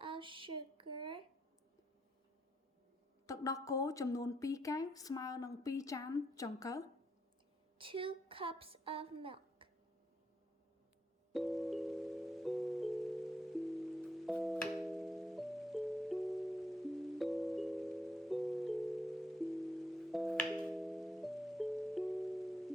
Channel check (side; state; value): both; normal; correlation 0.76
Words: of sugar, ទឹកដោះគោចំនួន2កែវស្មើនឹង2ចានចង្កឹះ 2 cups of milk.